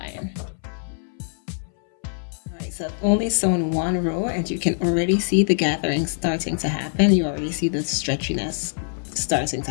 All right, so I've only sewn one row, and you can already see the gathering starting to happen. You already see the stretchiness starting to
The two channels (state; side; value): silent; right; 62 dB below the other